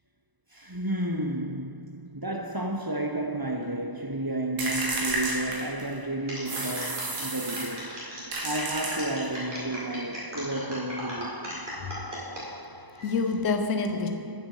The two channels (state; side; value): late; left; 1.0 ms